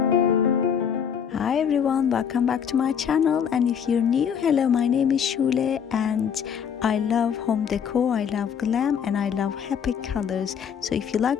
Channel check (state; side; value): quieter; right; 7.7 dB